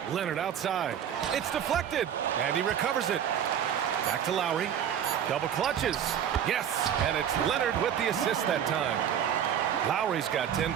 Leonard outside. It's deflected. And he recovers it. Back to Lowry. Double clutches. Yes, and it's Leonard with the assist that time. Lowry's got 10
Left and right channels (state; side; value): quieter; left; 9.2 dB